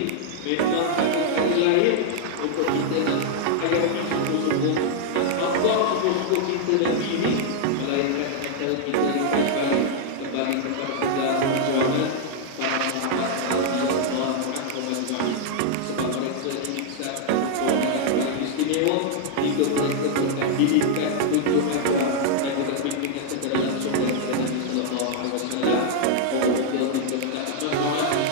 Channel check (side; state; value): both; different; correlation -0.01